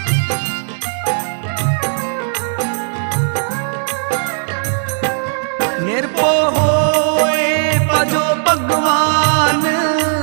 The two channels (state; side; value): silent; left; 69 dB below the other